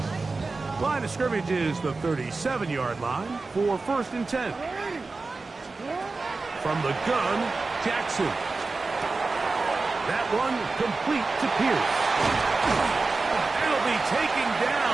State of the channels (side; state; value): left; quieter; 3.8 dB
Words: Line of scrimmage is the 37-yard line for 1st and 10. From the gun, Jackson. That one complete to Pierce. It'll be taken